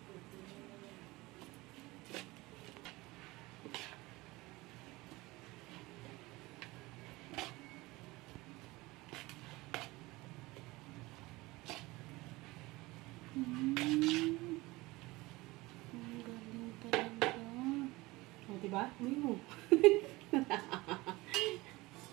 Diba? Uy mo.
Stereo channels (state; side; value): quieter; left; 21.3 dB